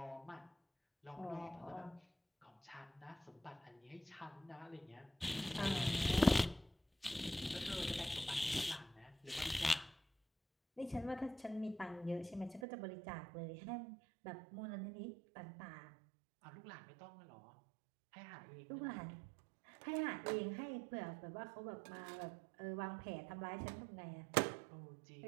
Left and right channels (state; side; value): drops out; left; at 12.7 s